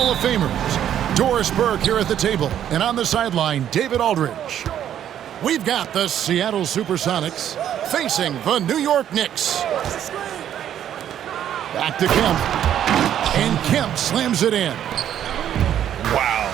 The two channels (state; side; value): quieter; left; 10.4 dB